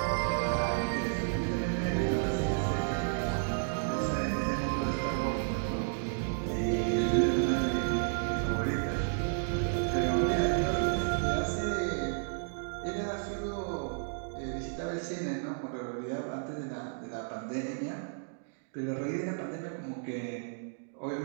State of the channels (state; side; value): silent; left; digital silence